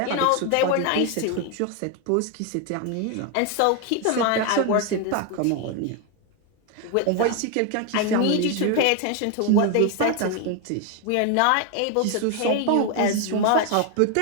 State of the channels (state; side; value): different; both; correlation 0.01